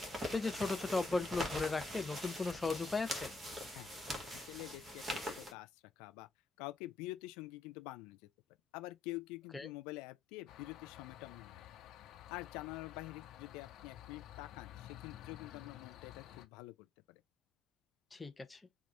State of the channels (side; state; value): right; quieter; 3.6 dB